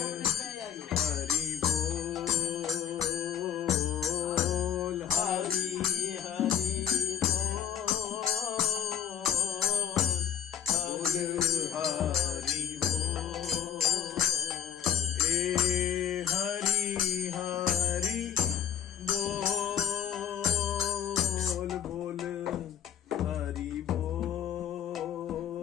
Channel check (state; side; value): quieter; right; 9.1 dB